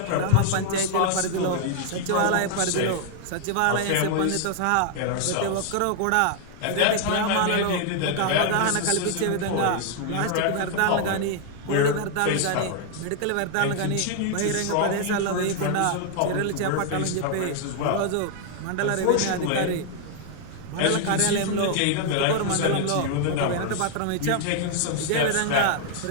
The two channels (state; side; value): different; both; correlation 0.00